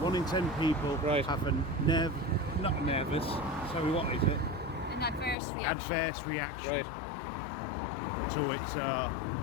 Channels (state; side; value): drops out; right; at 5.4 s